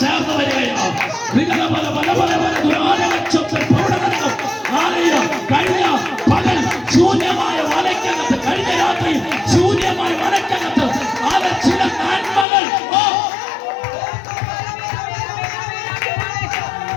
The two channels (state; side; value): drops out; right; at 12.5 s